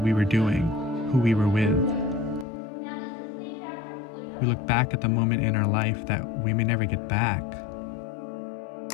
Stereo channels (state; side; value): drops out; right; at 2.5 s